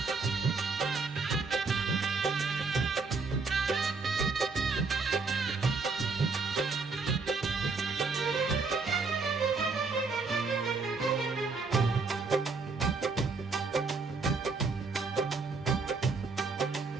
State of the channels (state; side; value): quieter; left; 4.3 dB